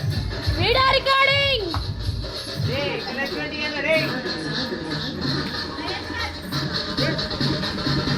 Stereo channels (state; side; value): identical; both; correlation 1.00